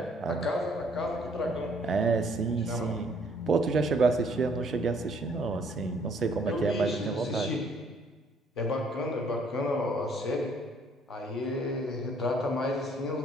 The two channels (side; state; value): both; normal; correlation 0.63